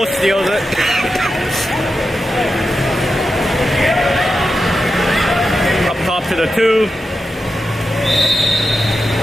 steals it. Up top to the 2.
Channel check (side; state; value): both; normal; correlation 0.89